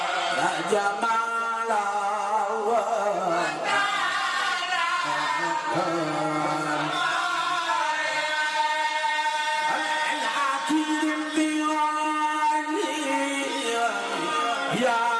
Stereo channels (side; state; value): both; identical; correlation 1.00